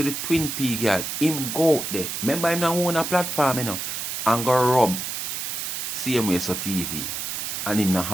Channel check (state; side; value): noise; right; hiss, 4 dB below the sound